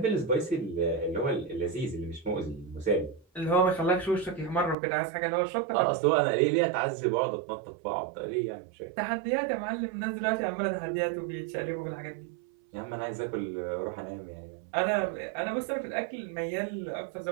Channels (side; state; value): left; drops out; at 4.8 s